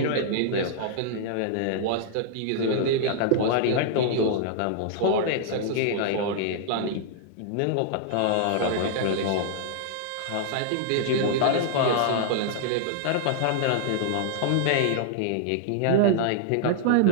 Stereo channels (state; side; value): different; both; correlation -0.01